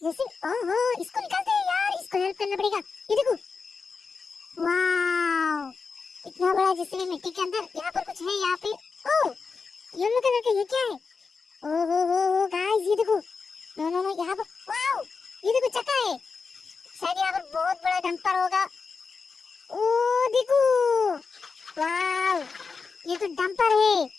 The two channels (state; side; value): quieter; right; 4.9 dB